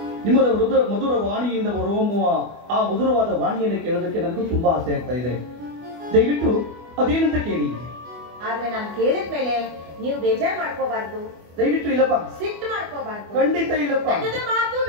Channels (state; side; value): late; left; 24 ms